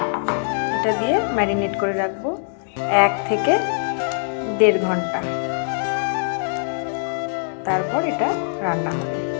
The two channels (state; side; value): silent; right; digital silence